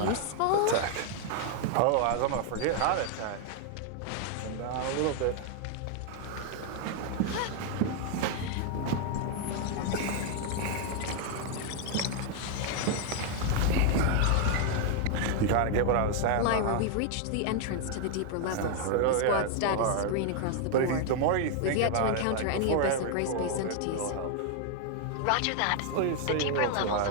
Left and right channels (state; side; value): different; both; correlation 0.00